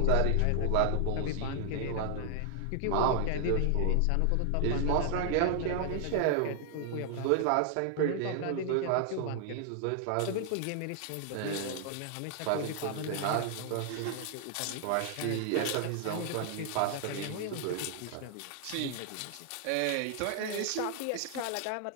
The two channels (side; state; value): both; different; correlation 0.00